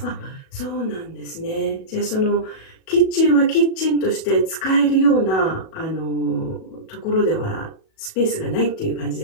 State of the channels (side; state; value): right; late; 37 ms